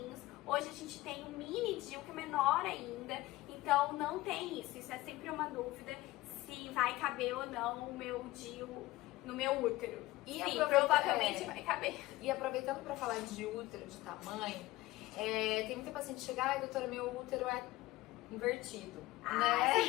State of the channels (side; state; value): right; quieter; 18.3 dB